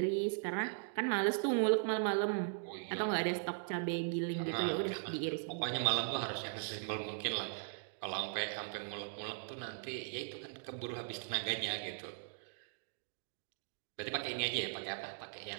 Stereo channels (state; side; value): silent; left; digital silence